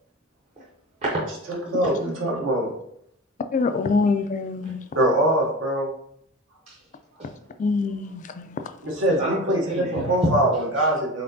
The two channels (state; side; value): normal; both; correlation 0.32